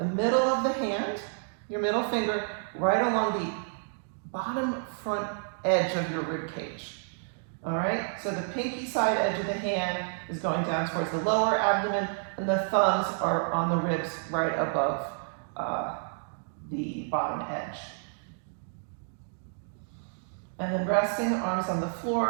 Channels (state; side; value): silent; left; digital silence